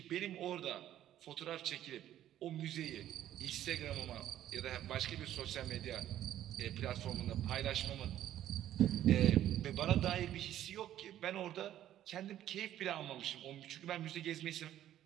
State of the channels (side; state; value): left; quieter; 12.1 dB